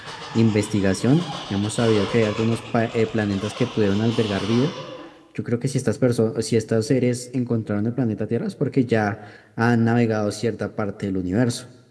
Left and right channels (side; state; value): both; identical; correlation 1.00